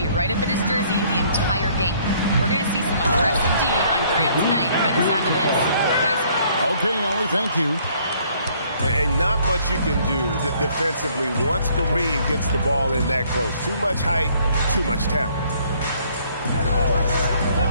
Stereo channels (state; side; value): inverted; both; correlation -0.62